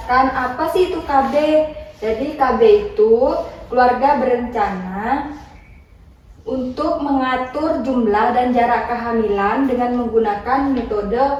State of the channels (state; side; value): identical; both; correlation 1.00